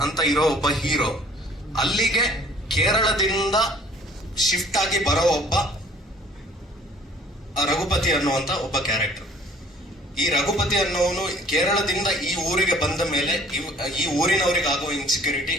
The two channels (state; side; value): normal; both; correlation 0.54